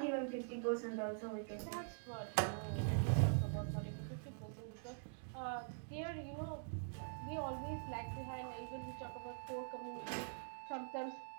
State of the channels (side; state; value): left; silent; digital silence